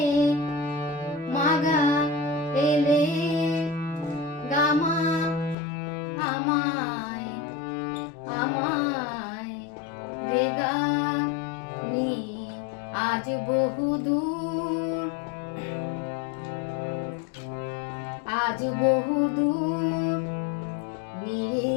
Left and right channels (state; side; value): drops out; right; at 5.6 s